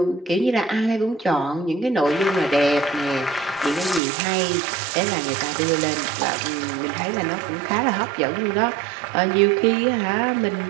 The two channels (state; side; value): drops out; left; at 4.0 s